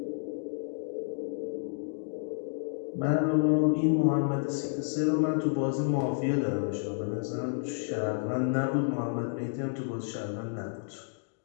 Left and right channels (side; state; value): right; silent; digital silence